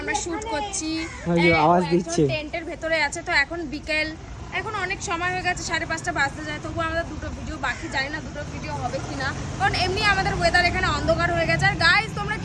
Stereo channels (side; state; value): both; identical; correlation 1.00